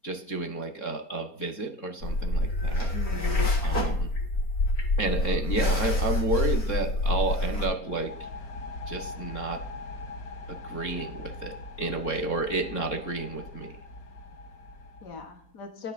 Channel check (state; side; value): late; right; 4.4 ms